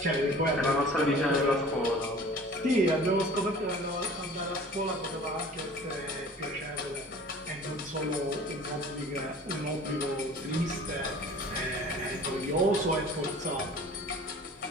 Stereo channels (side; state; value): both; normal; correlation 0.45